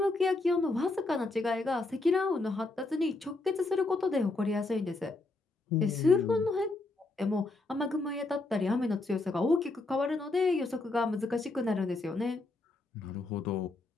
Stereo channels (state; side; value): quieter; right; 3.2 dB